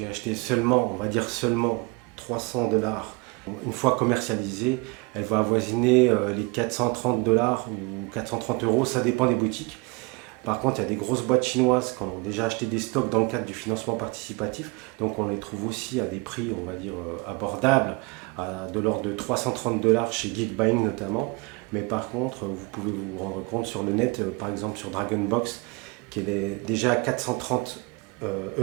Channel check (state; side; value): quieter; left; 27.8 dB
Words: acheté seulement, on va dire seulement 300 $. Une fois commercialisée, elle va avoisiner les 430 $ ou 430 €, ça dépend des boutiques. Par contre, il y a des grosses boîtes chinoises qui ont déjà acheté des stocks dans le cadre du financement participatif. Donc on les trouve aussi à des prix, on va dire, abordables, de l'ordre de 330 $ chez Geekbuying notamment. Mais par contre, vous pouvez vous rendre compte sur le net, par exemple sur Dragonbox, qu'elle est déjà à 430